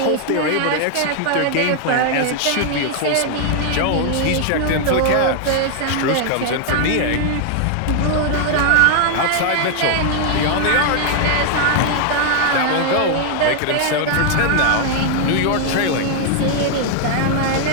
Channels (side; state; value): both; different; correlation 0.00